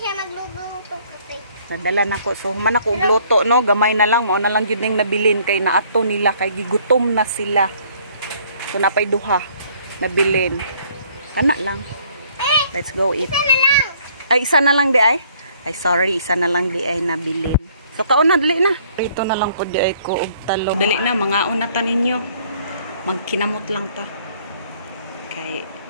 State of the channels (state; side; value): inverted; both; correlation -0.61